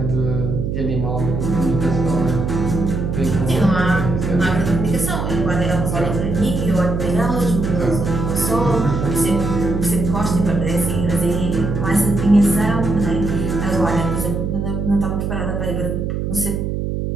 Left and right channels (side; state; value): right; noise; hum, 2 dB below the sound